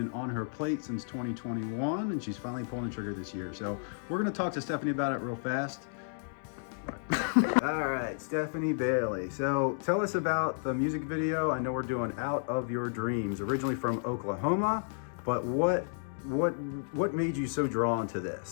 on her plate since 2021, and she's finally pulling the trigger this year. So we're going to talk to Stephanie about it real fast. All right, Stephanie Bailey. So tell us about the music video. I know we're doing Out of Your Dreams, originally from Oklahoma, but what made you so drawn to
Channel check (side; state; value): right; silent; digital silence